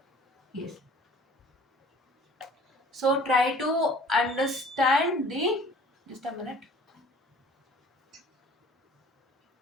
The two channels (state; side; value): normal; both; correlation 0.50